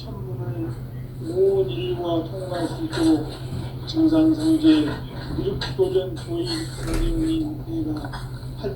온 인류가 통과할 수 있도록 증산상제 미륵도전 도인 선생님 내가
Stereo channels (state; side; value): identical; both; correlation 1.00